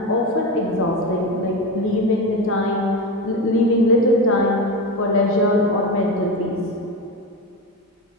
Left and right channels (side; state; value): both; normal; correlation 0.20